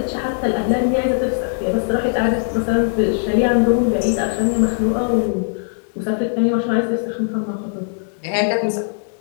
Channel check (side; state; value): right; silent; digital silence